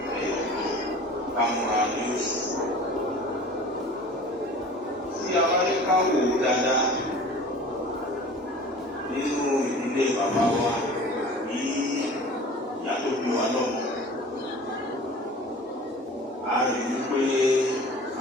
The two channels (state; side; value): normal; both; correlation 0.42